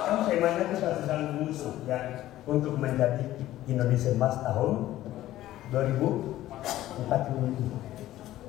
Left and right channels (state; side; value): quieter; right; 14.5 dB